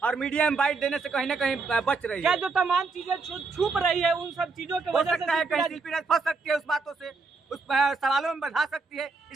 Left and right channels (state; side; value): quieter; left; 4.2 dB